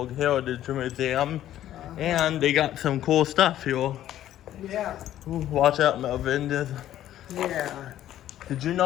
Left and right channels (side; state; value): right; quieter; 12.4 dB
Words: Heritage Museum. And they got some cool stuff here. Yeah. Ooh, watch out, Melvin. Yeah. Did you